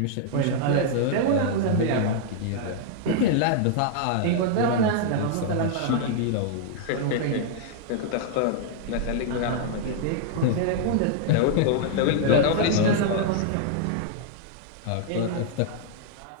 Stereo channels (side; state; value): both; different; correlation -0.01